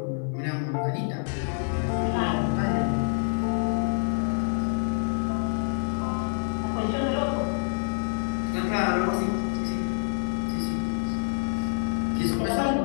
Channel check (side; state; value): right; silent; 60 dB below the other